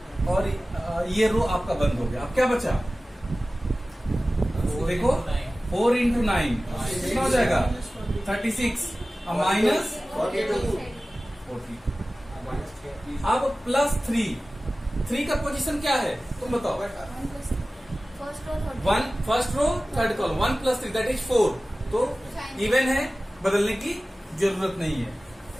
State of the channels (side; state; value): both; normal; correlation 0.96